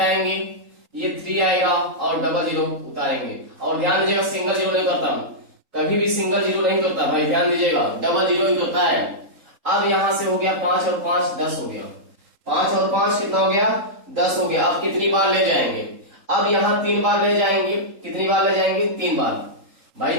ये 3 आएगा और डबल जीरो उतारेंगे। और ध्यान दीजिएगा, सिंगल जीरो नहीं करता, कभी भी सिंगल जीरो नहीं करता भाई, ध्यान दीजिएगा, डबल जीरो ही करता है। अब यहां से हो गया 5 और 5 10 हो गया। 5 और 5 कितना हो गया? 10 हो गया। अब कितनी बार ले जाएंगे? अब यहाँ 3 बार ले जाएंगे। कितनी बार ले जाएंगे? 3 बार भाई,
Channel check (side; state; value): left; late; 3.8 ms